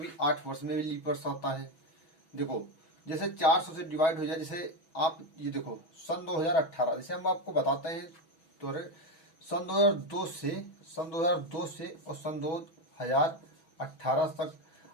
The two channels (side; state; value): right; late; 6.1 ms